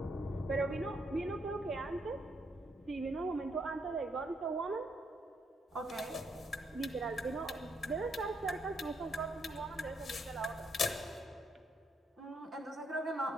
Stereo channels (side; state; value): both; normal; correlation 0.74